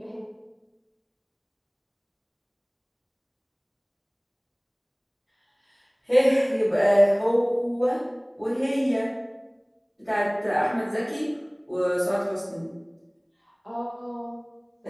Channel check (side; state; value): both; identical; correlation 1.00